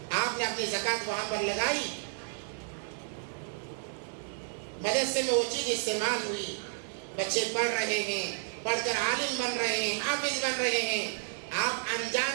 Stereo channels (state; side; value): silent; left; digital silence